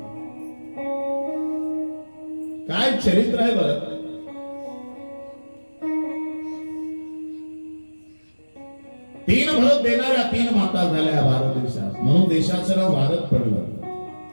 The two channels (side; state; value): both; inverted; correlation -1.00